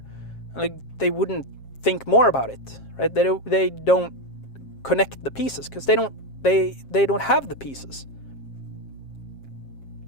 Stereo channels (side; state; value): right; late; 7.4 ms